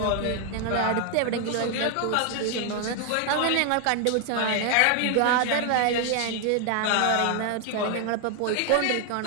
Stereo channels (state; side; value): different; both; correlation 0.00